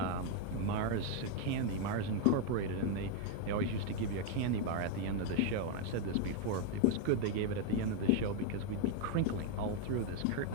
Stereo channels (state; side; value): different; both; correlation 0.00